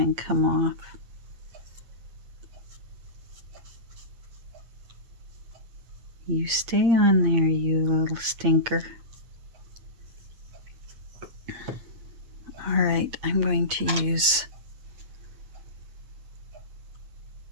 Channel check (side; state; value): left; late; 8.7 ms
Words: come off. You stay on there, you little stinker. All right, I'm going to use